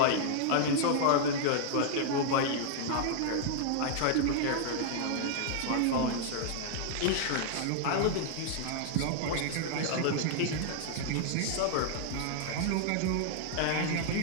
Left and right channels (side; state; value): both; different; correlation -0.01